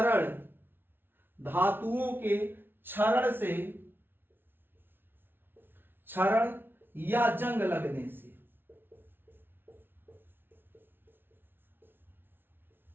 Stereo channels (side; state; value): left; late; 0.10 ms